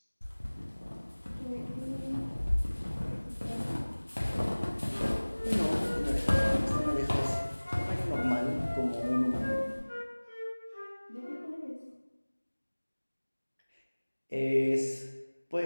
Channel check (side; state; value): both; inverted; correlation -1.00